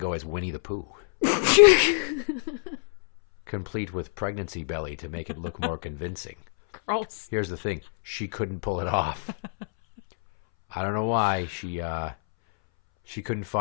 as Winnie the Pooh. Complete with pregnancy belly to make it look more convincing. Gross. Here's the thing. She couldn't pull it off. I don't know why. She couldn't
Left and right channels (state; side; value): silent; right; 60 dB below the other